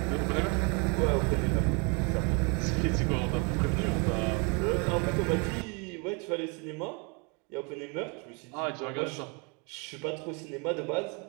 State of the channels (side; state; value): left; quieter; 32.8 dB